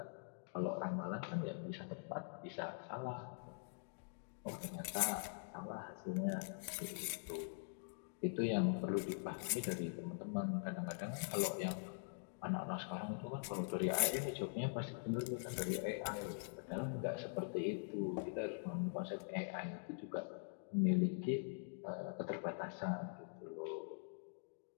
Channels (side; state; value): right; silent; digital silence